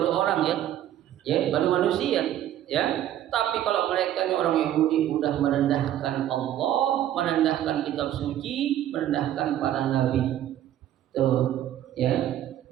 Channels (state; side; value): quieter; left; 11.9 dB